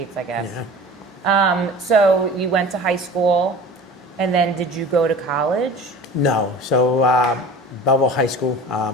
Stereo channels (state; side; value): normal; both; correlation 0.39